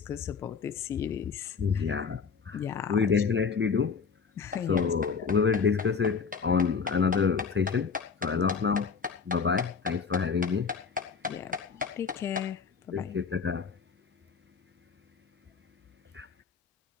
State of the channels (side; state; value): right; quieter; 5.8 dB